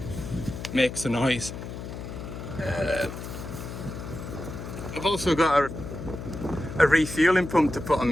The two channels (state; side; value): noise; left; hum, 9 dB below the sound